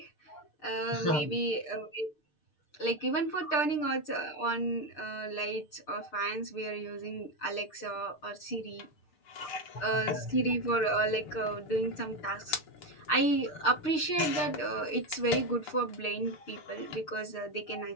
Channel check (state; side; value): late; right; 6.6 ms